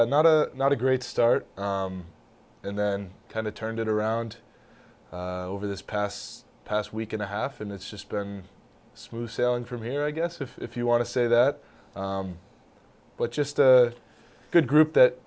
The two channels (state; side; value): identical; both; correlation 1.00